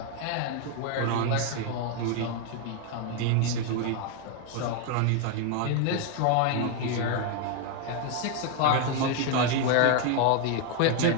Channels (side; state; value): both; different; correlation 0.01